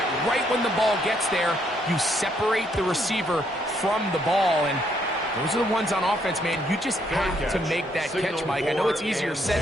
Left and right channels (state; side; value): normal; both; correlation 0.72